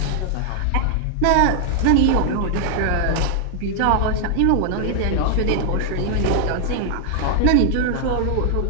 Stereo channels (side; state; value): both; different; correlation 0.00